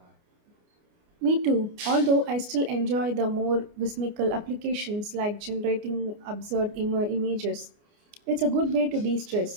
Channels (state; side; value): late; left; 29 ms